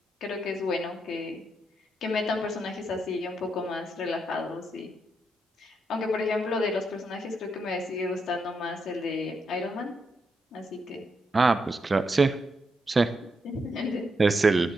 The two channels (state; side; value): normal; both; correlation 0.81